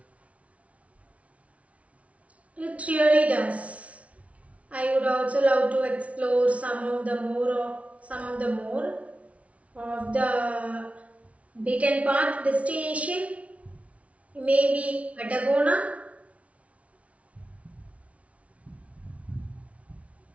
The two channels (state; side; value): late; left; 0.065 ms